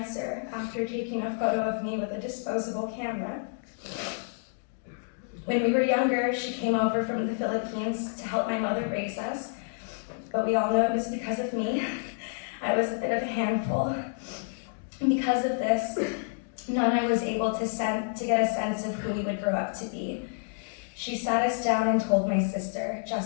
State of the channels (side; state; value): right; silent; digital silence